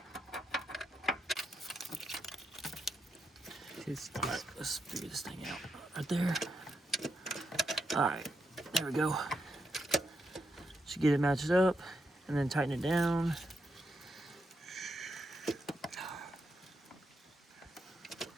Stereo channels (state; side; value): normal; both; correlation 0.82